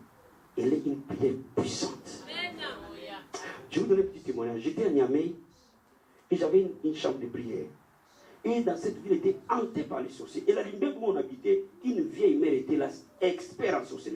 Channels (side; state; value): both; identical; correlation 1.00